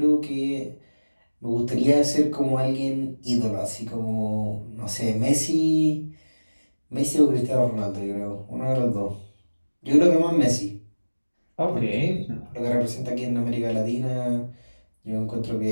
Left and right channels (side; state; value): both; inverted; correlation -1.00